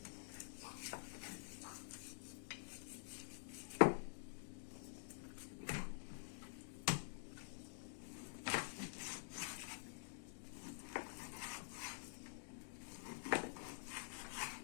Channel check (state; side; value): silent; right; digital silence